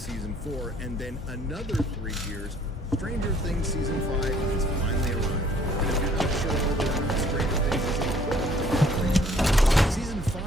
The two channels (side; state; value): both; normal; correlation 0.59